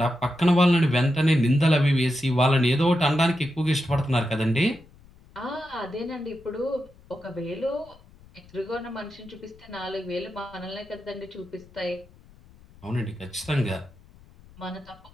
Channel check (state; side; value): noise; left; rumble, 25 dB below the sound